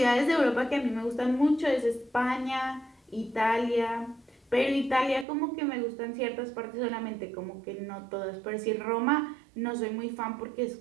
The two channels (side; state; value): left; drops out; at 5.2 s